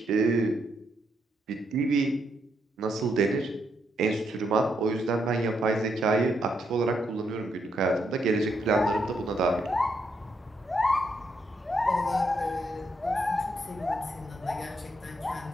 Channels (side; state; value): both; normal; correlation 0.78